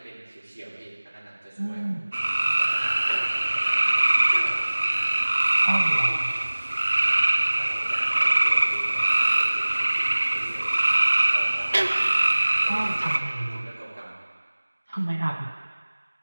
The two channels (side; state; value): both; inverted; correlation -1.00